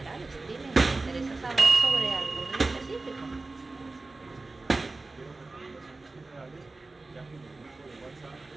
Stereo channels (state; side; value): quieter; left; 3.4 dB